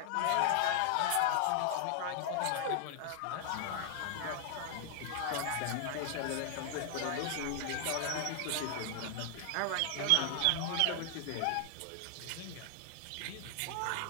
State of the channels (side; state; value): both; different; correlation 0.00